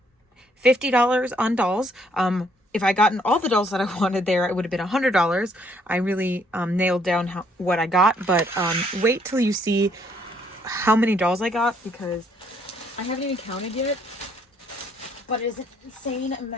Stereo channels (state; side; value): normal; both; correlation 0.67